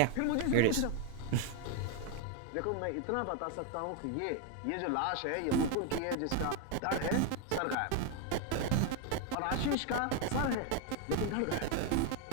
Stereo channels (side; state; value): both; different; correlation 0.01